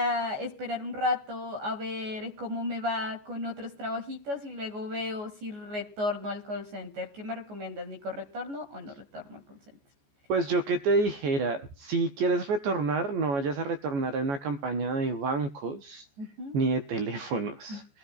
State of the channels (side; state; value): left; late; 14 ms